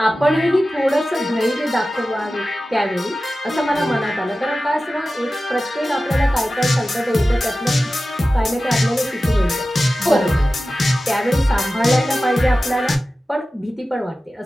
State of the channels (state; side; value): normal; both; correlation 0.95